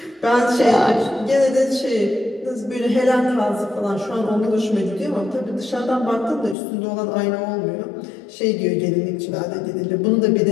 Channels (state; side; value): drops out; right; at 6.6 s